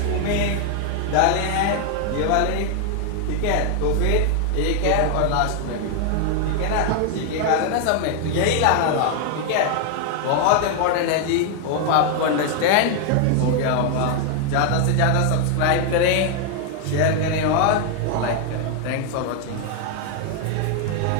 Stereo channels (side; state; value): both; different; correlation 0.00